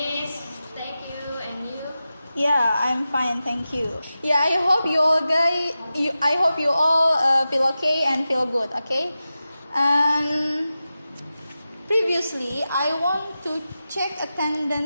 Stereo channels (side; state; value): both; inverted; correlation -0.93